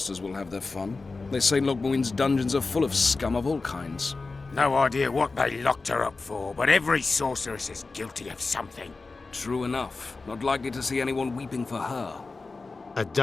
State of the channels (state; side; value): quieter; right; 3.9 dB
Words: will have their fun. They say Logmuin's dungeons are full of scum of all kinds. No idea what they locked her up for, but every sorceress is guilty of something. True enough. Not likely to see anyone weeping for her. A